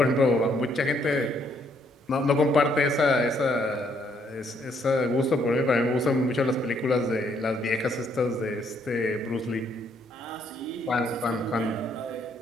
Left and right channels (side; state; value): both; normal; correlation 0.70